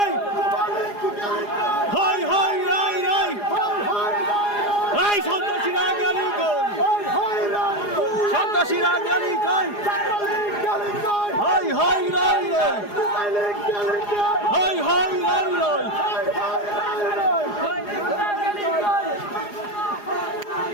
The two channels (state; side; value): late; right; 4.9 ms